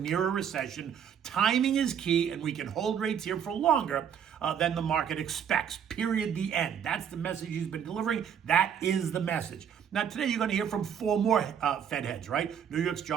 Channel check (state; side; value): quieter; left; 8.3 dB